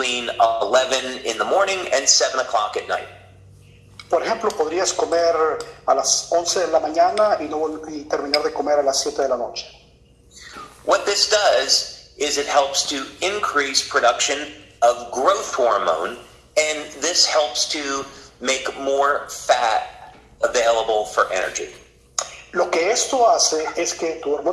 11 in the morning and 7 o'clock at night. Por ejemplo, podrías comer a las 11 de la mañana y terminar de comer a las 7 de la noche. What this does is it helps to increase production of growth hormone, and this helps to make more fat available for energy. Lo que esto hace es que tu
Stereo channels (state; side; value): identical; both; correlation 1.00